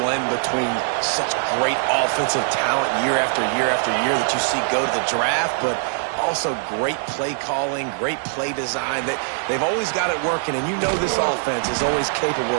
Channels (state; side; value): silent; left; 64 dB below the other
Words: between such great offensive talent year after year after year that you see go to the draft, but also great play calling, great play design. They've always got it working, and you know this offense is always capable